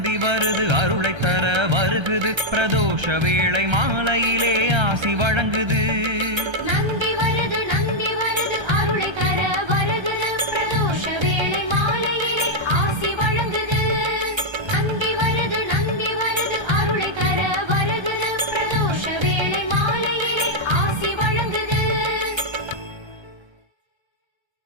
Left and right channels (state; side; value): late; left; 1.3 ms